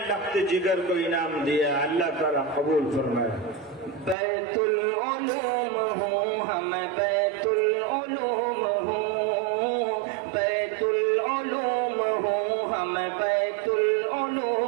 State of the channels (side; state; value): left; drops out; at 4.2 s